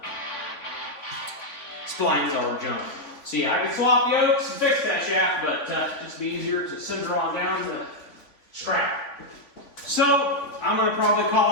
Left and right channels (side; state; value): right; late; 3.5 ms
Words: splines all junk. So yeah, I could swap yokes and fix that shaft, but just be easier to send her on down to the strap. So I'm gonna probably